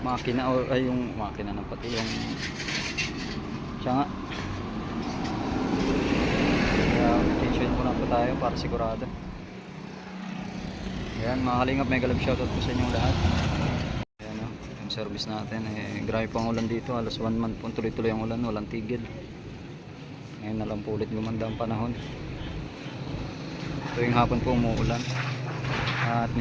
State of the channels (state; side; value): identical; both; correlation 1.00